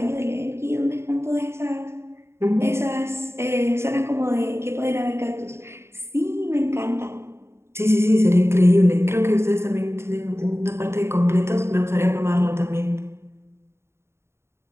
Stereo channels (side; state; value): left; late; 0.13 ms